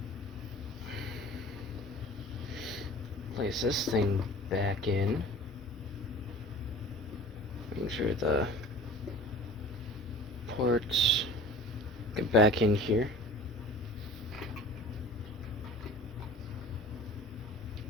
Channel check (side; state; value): both; normal; correlation 0.42